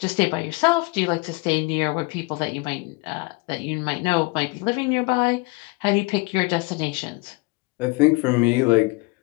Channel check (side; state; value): right; quieter; 26.5 dB